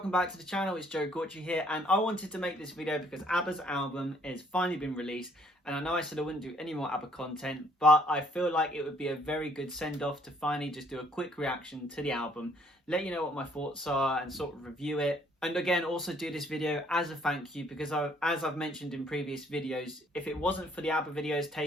back to the channel. It's Joe Gortry here, and I wanted to make this video because ABBA's album has finally been released, and I know I said I wouldn't do any more ABBA content, but I feel like it would be a very good send-off to finally just do a quick reaction to the album, let you know what my thoughts are and sort of review it. And again, also do this video as a thank you because as I've mentioned in previous videos, if it wasn't for the ABBA videos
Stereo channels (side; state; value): both; normal; correlation 0.64